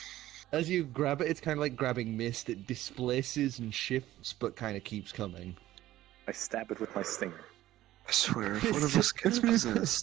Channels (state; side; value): quieter; left; 14.8 dB